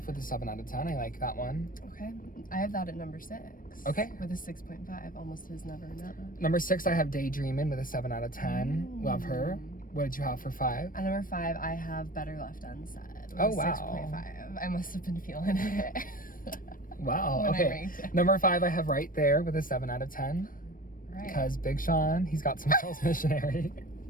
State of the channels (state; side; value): late; right; 0.40 ms